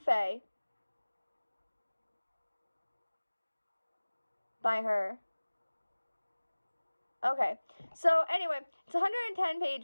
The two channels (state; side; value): inverted; both; correlation -1.00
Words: by her. Okay, so anyway, it's 110